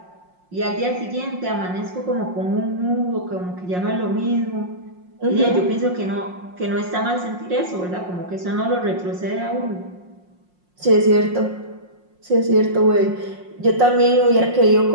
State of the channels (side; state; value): left; late; 5.6 ms